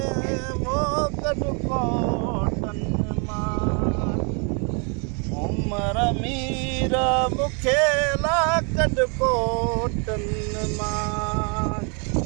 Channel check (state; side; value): quieter; left; 36.1 dB